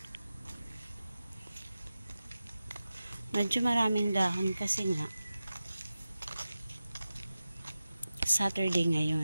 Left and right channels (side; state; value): both; inverted; correlation -0.94